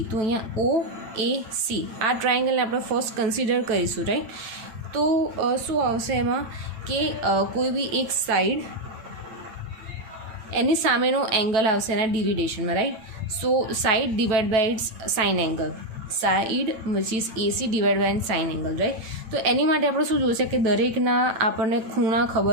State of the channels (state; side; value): late; left; 9.0 ms